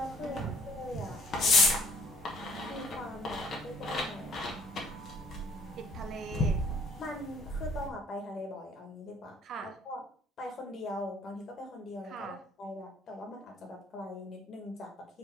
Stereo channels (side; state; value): both; normal; correlation 0.60